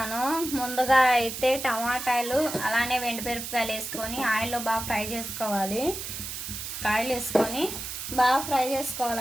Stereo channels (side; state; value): right; noise; hiss, 7 dB below the sound